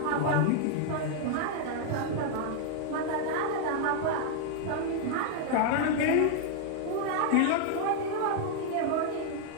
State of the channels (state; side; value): different; both; correlation 0.00